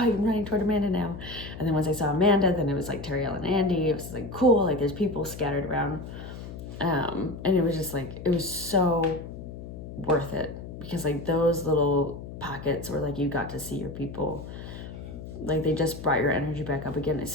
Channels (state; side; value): noise; left; hum, 11 dB below the sound